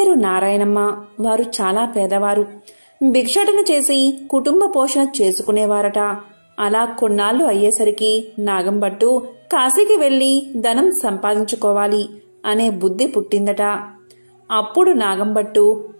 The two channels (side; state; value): both; inverted; correlation -1.00